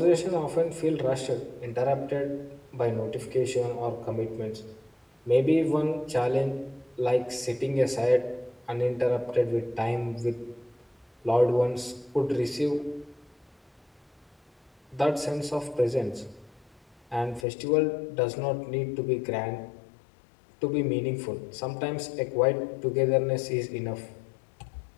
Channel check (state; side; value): drops out; right; at 17.4 s